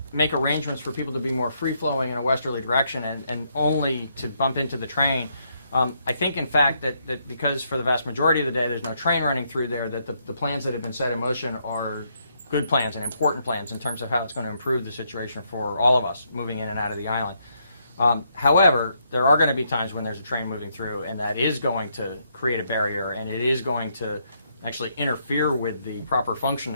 make arrangements for people to be more free-flowing in a westerly direction and only to bump into the train, I think, in fact, that because for the vast majority of the day there's no train running through there, that the plans that have been set in motion are good plans and important plans in terms of how it's going to improve the situation for all of us moving in and out of the island. However, there are going to be times when there's a train moving through, and that is going to create a barrier, and it is going to actually interfere with the proper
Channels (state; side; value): inverted; both; correlation -0.75